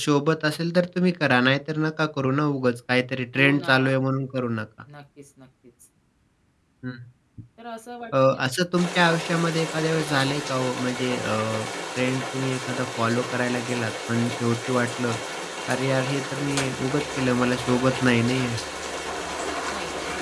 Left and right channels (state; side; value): identical; both; correlation 1.00